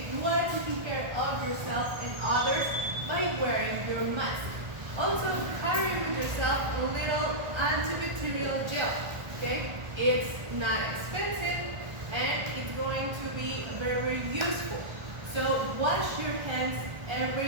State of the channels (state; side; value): late; left; 1.3 ms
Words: You are taking care of yourself and others by wearing your mask. Also, carry with yourself a little antibacterial gel. Okay? It's not expensive and it's going to be very useful. So wash your hands